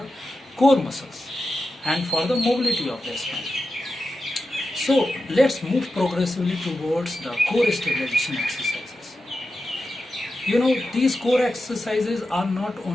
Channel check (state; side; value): normal; both; correlation 0.91